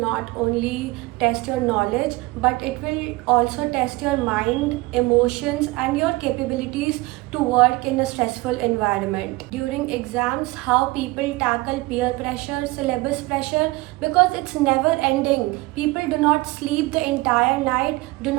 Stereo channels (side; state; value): left; quieter; 21.9 dB